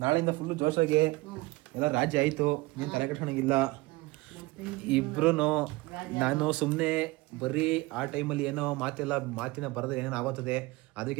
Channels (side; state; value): left; quieter; 21.6 dB